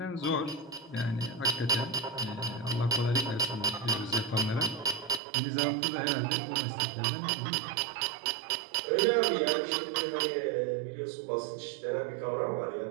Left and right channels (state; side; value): drops out; left; at 5.2 s